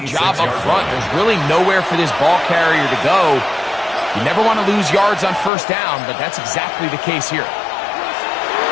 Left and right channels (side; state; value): right; drops out; at 5.5 s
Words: job up front. There's really nowhere for this ball carrier to go. You never want to lose yards on 1st down, but that's exactly the case here.